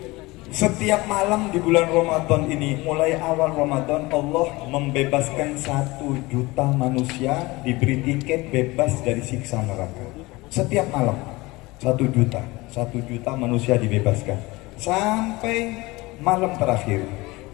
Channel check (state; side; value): quieter; right; 21.9 dB